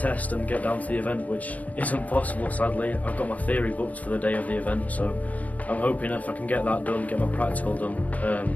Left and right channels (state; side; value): late; right; 0.073 ms